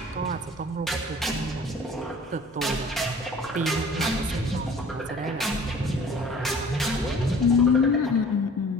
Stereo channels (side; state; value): both; normal; correlation 0.48